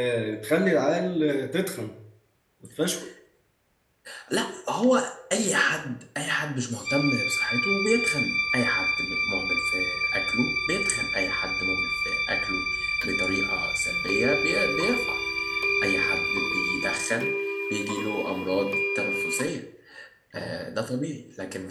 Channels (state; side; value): identical; both; correlation 1.00